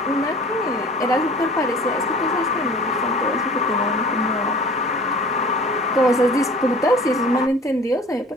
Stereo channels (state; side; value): normal; both; correlation 0.45